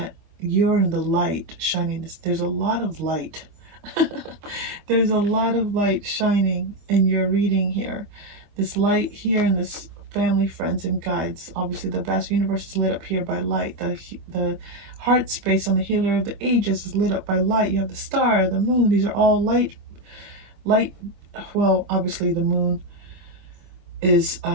you're in the light shining. There's a lot of light. There's a lot of light shining in your reading here. This light here in this family, friends, and guides. Obviously, the vast universe is lit up here by light. The heart space on the healer of the ages is lit up by light. You have the star, the moon. These are all light. Well, obviously, the moon is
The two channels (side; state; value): left; late; 25 ms